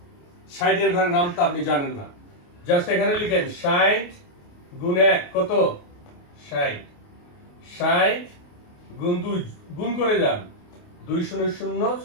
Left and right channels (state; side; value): late; right; 28 ms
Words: 60 ঘরের নামতা আপনি জানেন না, জাস্ট এখানে লিখেন 60 গুণ 1 কত? 60, 60 গুণ 2 গুণ করে যান, 2 0 0